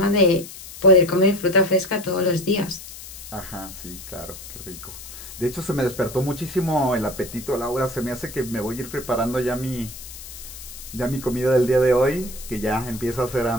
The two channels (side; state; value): left; noise; hiss, 14 dB below the sound